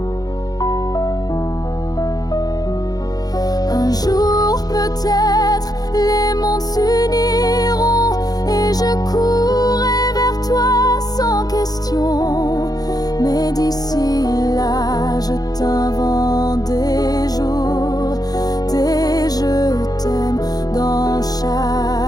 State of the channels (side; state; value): right; late; 0.19 ms